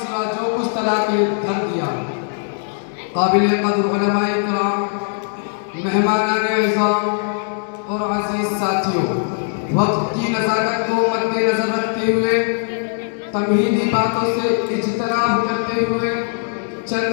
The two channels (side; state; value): right; silent; 66 dB below the other